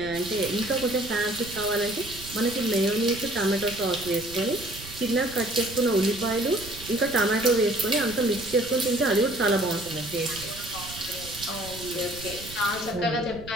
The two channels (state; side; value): noise; right; rumble, 15 dB below the sound